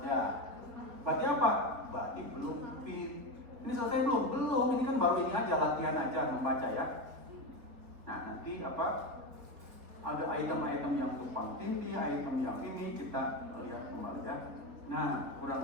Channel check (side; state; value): left; late; 3.9 ms